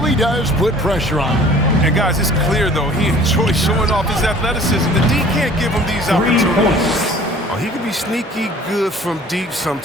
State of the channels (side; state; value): both; normal; correlation 0.49